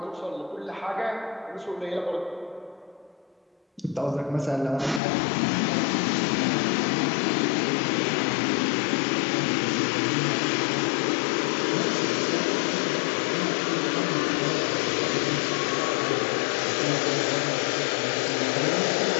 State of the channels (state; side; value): drops out; right; at 5.0 s